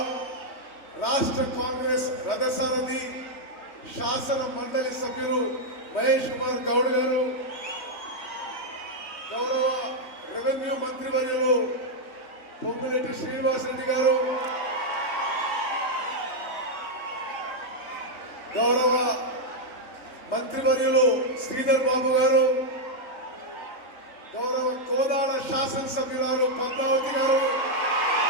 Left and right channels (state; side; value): late; right; 3.2 ms